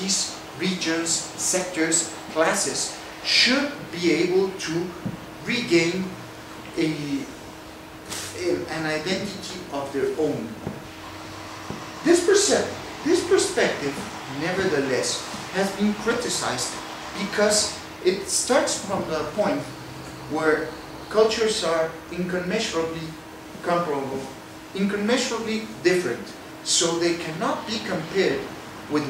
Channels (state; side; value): identical; both; correlation 1.00